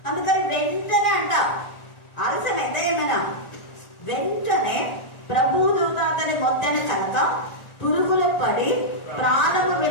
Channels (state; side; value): late; right; 1.4 ms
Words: అందుకని వెంటనే అంట ఆలస్యమైతే ఏమైనా వెంటనే ప్రభుదూత అతని మొత్తని కనుక పురుగులు పడి ప్రాణము